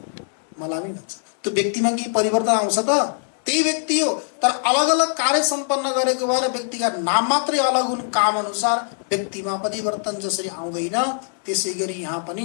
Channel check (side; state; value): right; silent; 64 dB below the other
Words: मलामी भन्छन्। त्यो व्यक्तिमा के परिवर्तन आउँछ त? त्यही व्यक्ति हो, तर अलग अलग कार्य सम्पन्न गरेको भएर व्यक्तिका नाम मात्रै अलग हुन्। काम अनुसार व्यक्तिमा परिवर्तन जसरी आउँदैन, त्यसै गरी यहाँ पनि